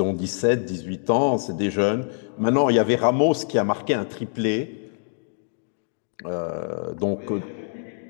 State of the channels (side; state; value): right; silent; digital silence